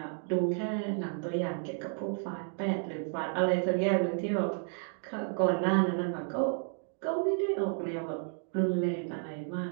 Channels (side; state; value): left; silent; 56 dB below the other